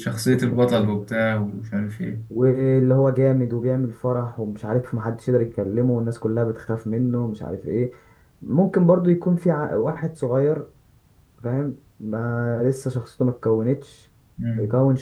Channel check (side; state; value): both; identical; correlation 1.00